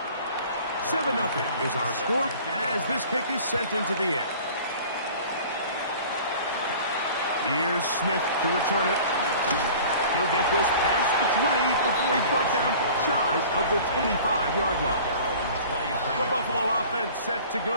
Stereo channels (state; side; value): inverted; both; correlation -0.45